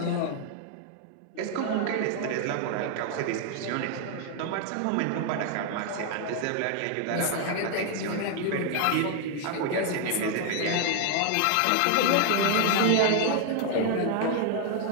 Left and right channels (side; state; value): both; different; correlation 0.00